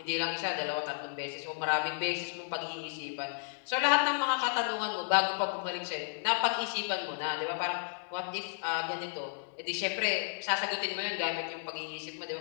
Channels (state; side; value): silent; right; digital silence